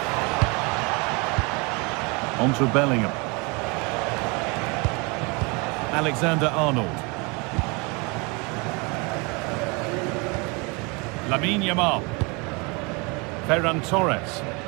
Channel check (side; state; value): left; quieter; 29.1 dB